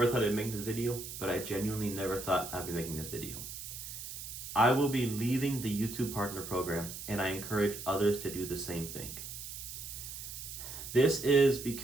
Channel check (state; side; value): noise; right; hiss, 9 dB below the sound